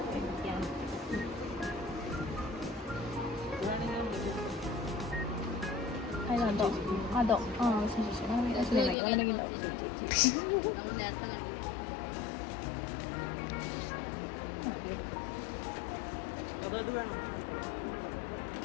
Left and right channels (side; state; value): right; drops out; at 9.0 s